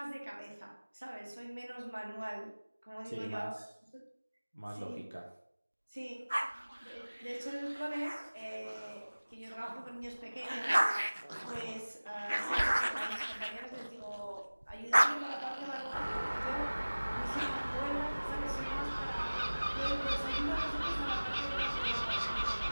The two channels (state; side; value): inverted; both; correlation -1.00